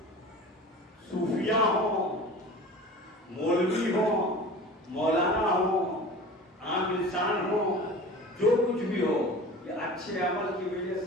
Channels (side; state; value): both; normal; correlation 0.38